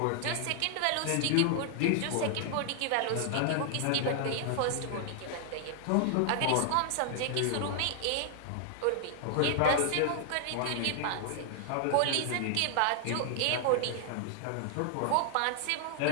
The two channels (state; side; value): different; both; correlation 0.00